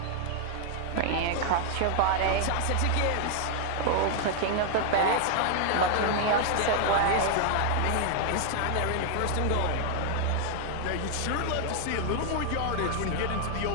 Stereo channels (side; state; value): both; different; correlation 0.00